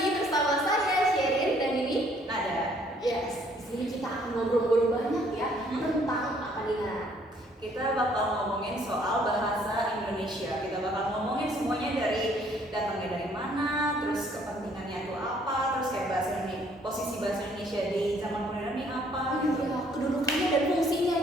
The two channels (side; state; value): both; normal; correlation 0.63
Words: bersama saya Sherin dan ini Nada. Yes, di sini kita akan ngobrol-ngobrol banyak ya tentang apa nih Nat? Kita bakal ngomongin soal bahasa Indonesia. Kita bakal ngomongin semuanya dari datangnya dari mana, terus kepentingannya itu apa, terus kayak bahasa Indonesia, posisi bahasa Indonesia di zaman modern ini apa gitu. Iya, kedudukannya dan fungsinya